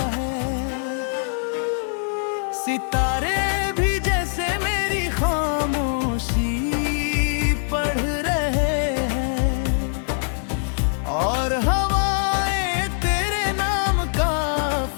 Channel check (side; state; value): right; silent; digital silence